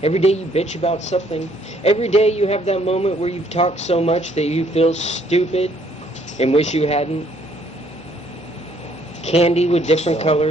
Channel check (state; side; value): normal; both; correlation 0.65